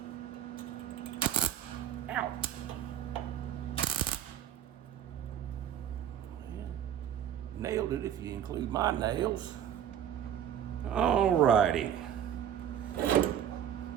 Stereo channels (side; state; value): left; quieter; 9.7 dB